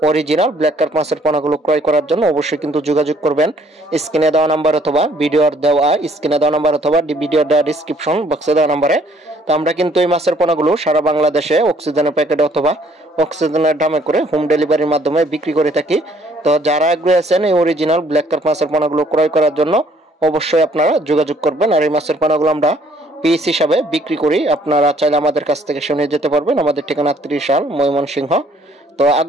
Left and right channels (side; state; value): both; normal; correlation 0.62